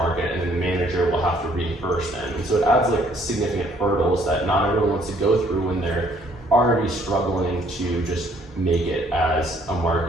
and then the manager will have to reimburse them. And so it adds like significant hurdles that not everyone wants to go through when they're already struggling to just make it as a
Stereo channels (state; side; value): normal; both; correlation 0.63